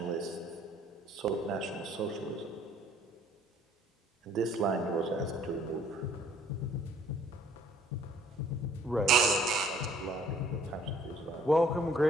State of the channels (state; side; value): normal; both; correlation 0.58